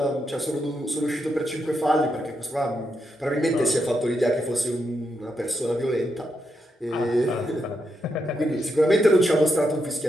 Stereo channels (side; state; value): both; normal; correlation 0.83